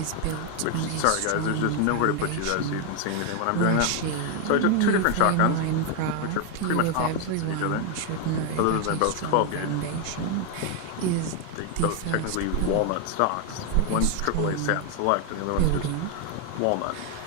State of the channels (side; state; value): both; different; correlation 0.01